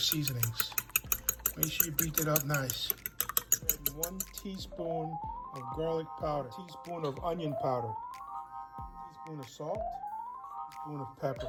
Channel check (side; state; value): both; identical; correlation 1.00